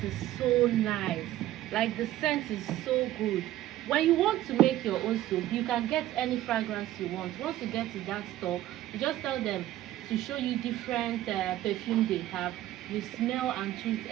is so nice. Like, the scent is so good. When you want to make your own soap, you can get any fragrance you want. Once you get to that store, you just tell them to show you different perfume they have. You smell and choose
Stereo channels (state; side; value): quieter; left; 14.2 dB